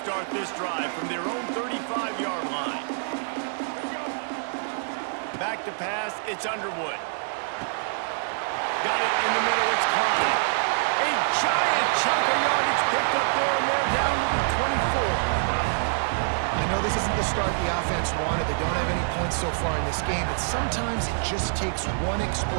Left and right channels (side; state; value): left; silent; digital silence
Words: this drive from their own 35-yard line. Back to pass, it's Underwood. Got it in the middle, it's Klein. A giant chunk of yardage picked up there, and they're down to the 24. I know this isn't the start the offense wanted. They don't have any points so far in this game, but sometimes it just takes one